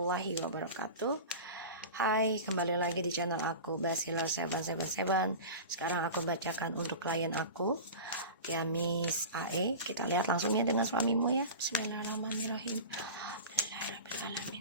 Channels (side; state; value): both; inverted; correlation -0.31